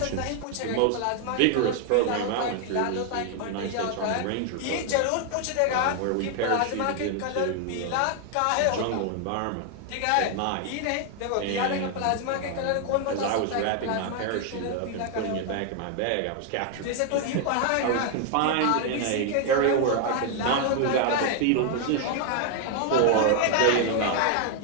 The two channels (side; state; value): both; different; correlation 0.00